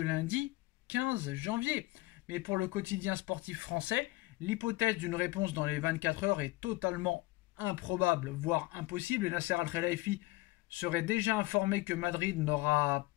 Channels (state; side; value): quieter; right; 20.3 dB